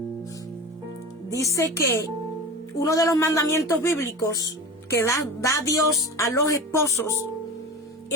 Dice que uno de los mandamientos bíblicos que da Dios a los esposos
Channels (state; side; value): normal; both; correlation 0.30